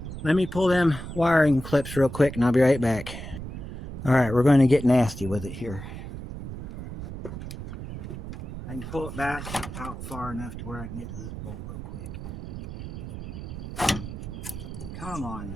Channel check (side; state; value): right; noise; rumble, 9 dB below the sound